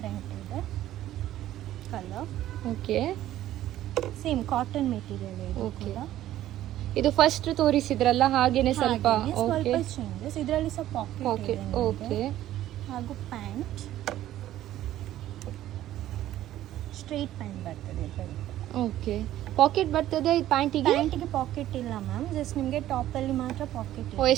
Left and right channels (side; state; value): left; quieter; 13.3 dB